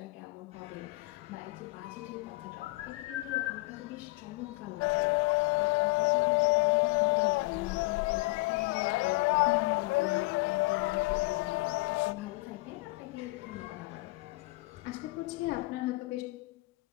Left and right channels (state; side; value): quieter; right; 23.5 dB